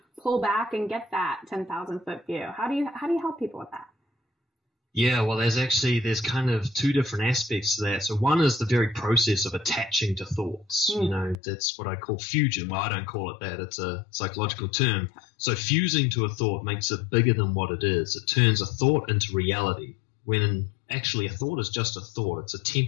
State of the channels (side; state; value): right; drops out; at 11.4 s